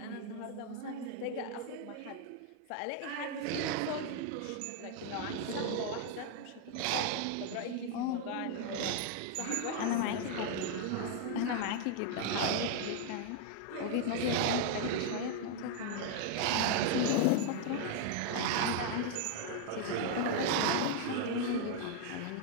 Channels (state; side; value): different; both; correlation 0.00